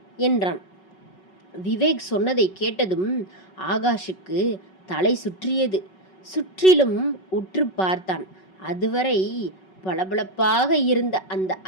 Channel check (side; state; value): right; late; 5.3 ms